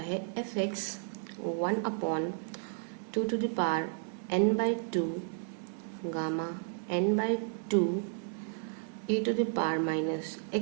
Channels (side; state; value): left; silent; 56 dB below the other